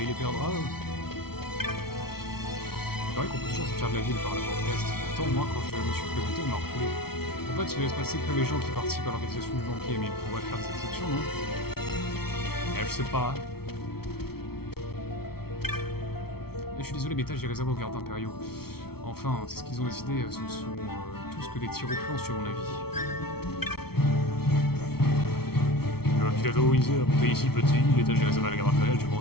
les perdra. Il paraît qu'on peut toujours sortir de la ville par la porte Est. Pourtant, moi, quand je me suis présenté, on m'a refoulé. En fait, il ne laisse passer que les gens qui participent à l'organisation du banquier, mais ils pourraient faire des exceptions, non? Je sais pas. Je suis désolé, mais je les réserve aux gardes impériaux. Enfin, c'est ce qu'ils ont décidé, ce ne sont tous que des tirs au flanc, sur mon avis. Je m'invite à favoriser à monter ici petit, l'étage est réservé à la garde impériale, tu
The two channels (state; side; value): late; right; 0.95 ms